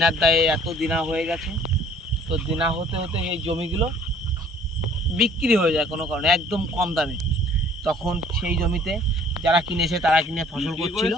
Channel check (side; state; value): both; normal; correlation 0.55